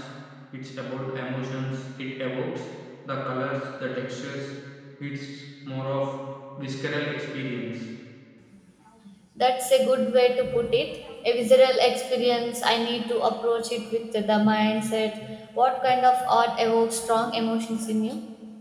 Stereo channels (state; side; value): identical; both; correlation 1.00